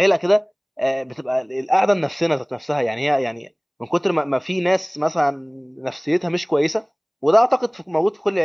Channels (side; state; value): both; identical; correlation 1.00